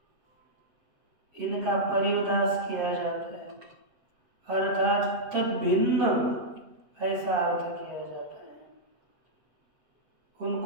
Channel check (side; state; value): left; late; 7.8 ms